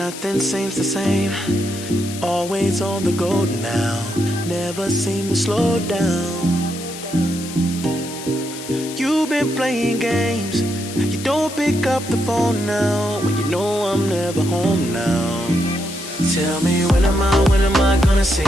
Nothing seems the same. Always on the go now. Never seem to slow down. You've been playing games. You don't pick up the phone now when you know I'm never home now. Tell me when am I gonna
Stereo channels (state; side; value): noise; left; hiss, 12 dB below the sound